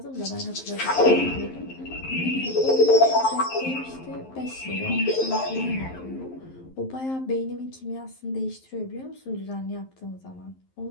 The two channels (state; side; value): late; right; 11 ms